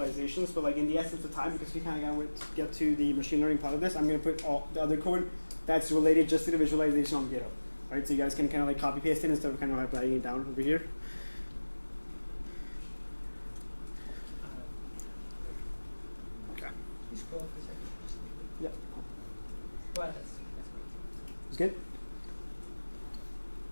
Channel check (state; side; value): inverted; both; correlation -1.00